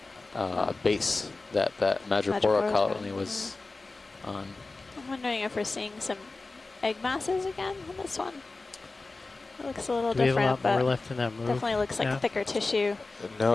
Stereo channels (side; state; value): right; quieter; 3.5 dB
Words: base that Madrepora colony was on. I'm wondering if we're seeing some egg masses again on this one. It looks a little Do we have a different, lot more but left in that move? definitely looks like Yeah. thicker tissue No,